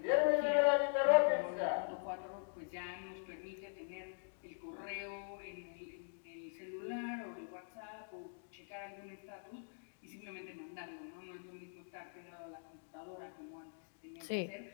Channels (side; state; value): right; silent; digital silence